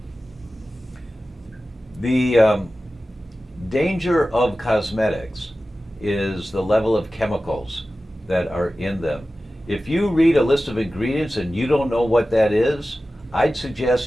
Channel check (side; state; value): both; normal; correlation 0.95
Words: The danger of cosmetics is the level of chemicals that are in them. If you read a list of ingredients and you don't know what that is, I'd